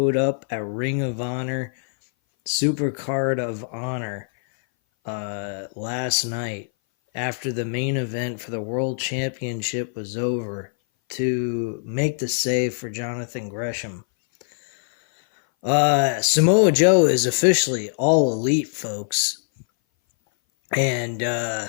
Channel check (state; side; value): silent; right; 59 dB below the other